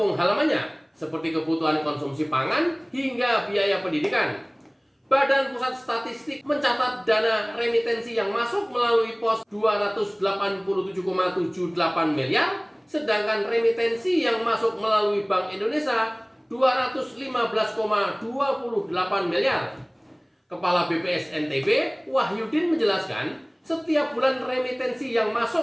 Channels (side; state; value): both; identical; correlation 1.00